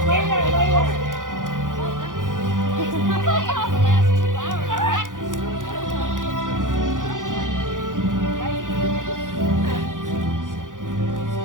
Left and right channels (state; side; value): late; left; 0.88 ms